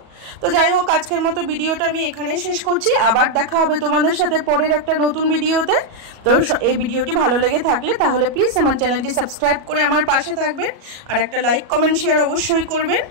তো যাই হোক, আজকের মতো ভিডিওটা আমি এখানেই শেষ করছি। আবার দেখা হবে তোমাদের সাথে পরের একটা নতুন ভিডিওতে। তো এই ভিডিওটি ভালো লেগে থাকলে তাহলে প্লিজ আমার চ্যানেলটি সাবস্ক্রাইব করে আমার পাশে থাকবেন, আর একটা লাইক, কমেন্ট, শেয়ার অবশ্যই করবেন।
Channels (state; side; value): late; left; 37 ms